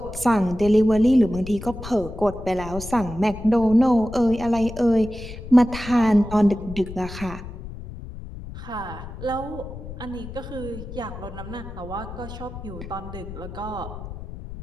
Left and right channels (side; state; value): left; noise; rumble, 11 dB below the sound